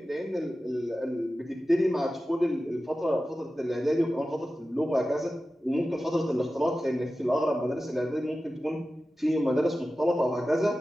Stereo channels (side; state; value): both; normal; correlation 0.94